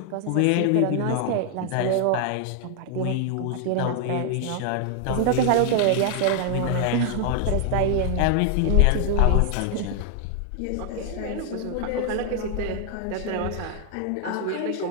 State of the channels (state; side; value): different; both; correlation 0.00